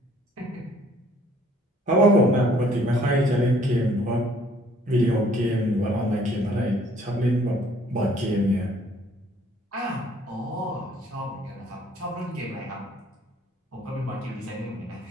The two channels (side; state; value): both; normal; correlation 0.60